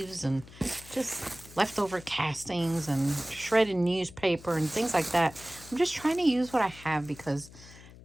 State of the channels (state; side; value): noise; left; hum, 19 dB below the sound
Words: and just leftover castings and shredded newspaper and things like that. I'm just trying to use what I have because